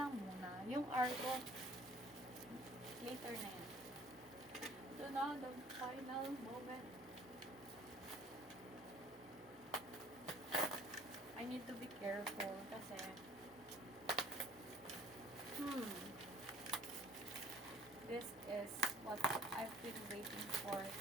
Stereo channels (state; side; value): normal; both; correlation 0.53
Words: lang muna. Yung art ko, later na yan. Ito na, the final moment. I need to be careful kasi this is what I've been waiting for